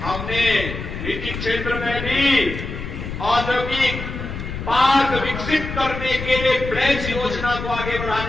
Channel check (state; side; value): noise; left; rumble, 7 dB below the sound